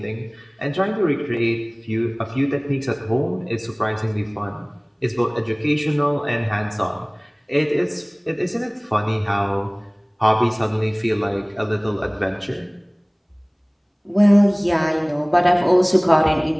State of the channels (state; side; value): identical; both; correlation 1.00